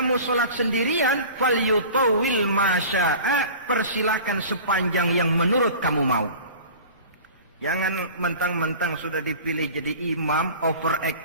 sholat sendirian, falyutawil masya'a, persilahkan sepanjang yang menurut kamu mau. Jangan mentang-mentang sudah dipilih jadi imam,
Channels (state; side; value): inverted; both; correlation -0.41